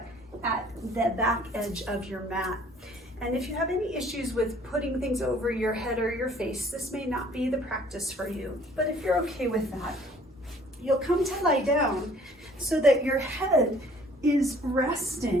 at the back edge of your mat. And if you have any issues with putting things over your head or your face, this may not be the practice for you. But if you're okay with that, you'll come to lie down so that your head is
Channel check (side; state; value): both; normal; correlation 0.56